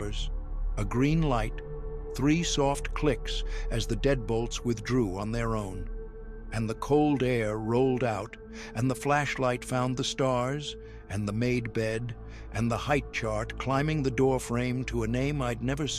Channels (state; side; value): identical; both; correlation 1.00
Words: a green light, 3 soft clicks as the deadbolts withdrew on their own. And the cold air rolled out, and the flashlight found the stars, and the made bed, and the height chart climbing the doorframe to a name I'd never